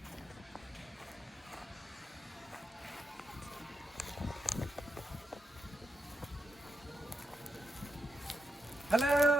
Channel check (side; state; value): both; normal; correlation 0.85